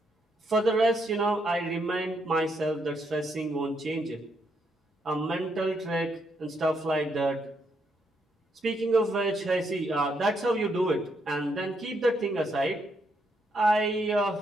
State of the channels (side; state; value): both; normal; correlation 0.77